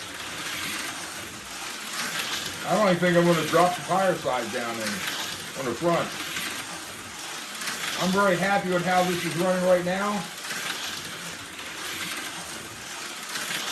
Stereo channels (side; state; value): both; identical; correlation 1.00